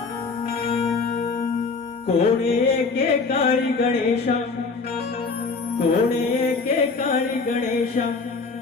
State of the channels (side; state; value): right; quieter; 4.4 dB